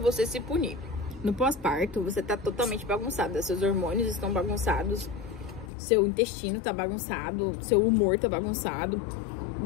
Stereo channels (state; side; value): drops out; right; at 5.7 s